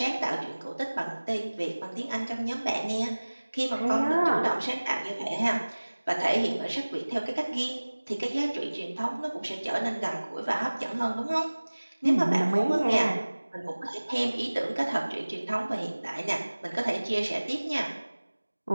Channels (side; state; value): both; inverted; correlation -1.00